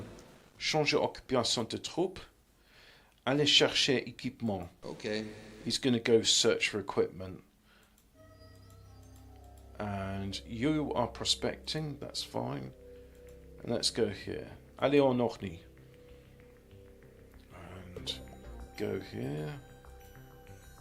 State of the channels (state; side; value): identical; both; correlation 1.00